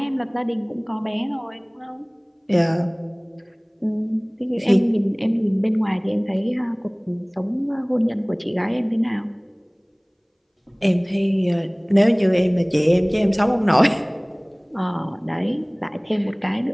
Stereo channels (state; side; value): identical; both; correlation 1.00